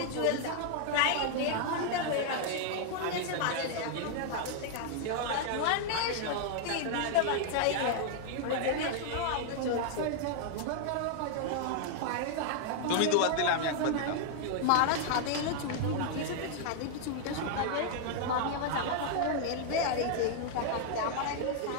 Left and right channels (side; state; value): both; different; correlation 0.00